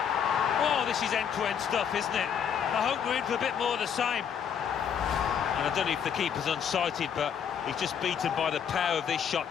Oh, this is end-to-end stuff, isn't it? I hope we're in for a bit more of the same. And I don't know if the keeper's unsighted, but he's just beaten by the power of this shot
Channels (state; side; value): quieter; right; 8.0 dB